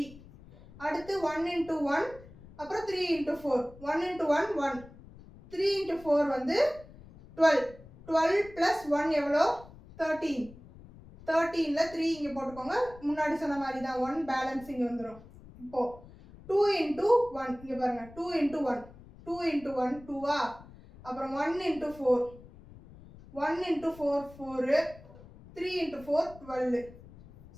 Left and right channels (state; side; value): noise; left; rumble, 20 dB below the sound